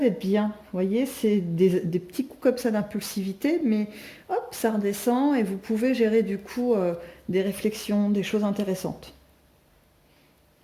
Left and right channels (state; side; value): identical; both; correlation 1.00